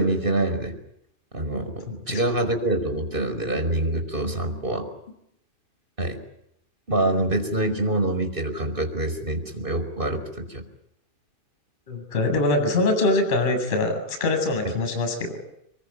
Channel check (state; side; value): late; left; 2.6 ms